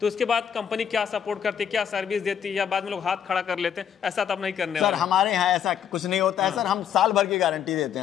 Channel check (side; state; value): right; quieter; 8.6 dB